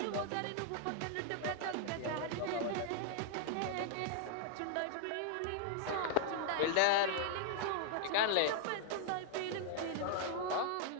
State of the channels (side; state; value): both; different; correlation 0.00